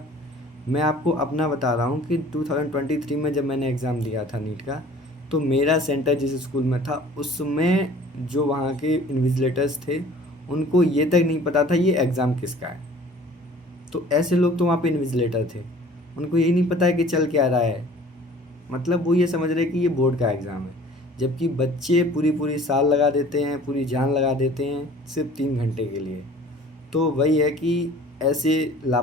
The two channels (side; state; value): both; normal; correlation 0.49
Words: मैं आपको अपना बता रहा हूँ कि 2023 में जब मैंने एग्ज़ाम दिया था नीट का, तो मेरा सेंटर जिस स्कूल में था उसमें जो वहाँ के इन्विजिलेटर्स थे, उनको ये तक नहीं पता था ये एग्ज़ाम किसका है। तो ऐसे लोग तो वहाँ पे इन्विजिलेटर थे, उनको यही नहीं पता है कि चल क्या रहा है। मतलब वो ये समझ रहे कि ये बोर्ड का एग्ज़ाम है, जबकि बच्चे पूरी पूरी साल लगा देते हैं, पूरी जान लगा देते हैं सिर्फ 3 घंटे के लिए। तो वही है कि ऐसे